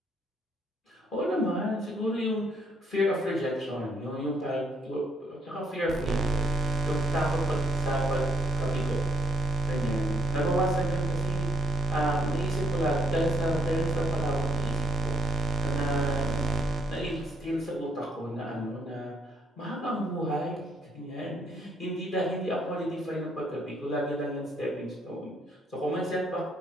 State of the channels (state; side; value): normal; both; correlation 0.71